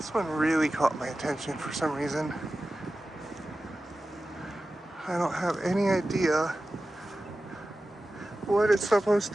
one really caught my attention for some reason. I don't have any idea what it's supposed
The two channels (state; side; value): normal; both; correlation 0.94